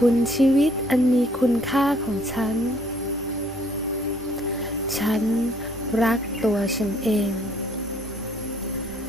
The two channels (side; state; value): both; normal; correlation 0.63